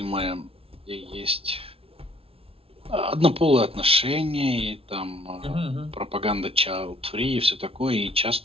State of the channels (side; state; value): left; late; 0.27 ms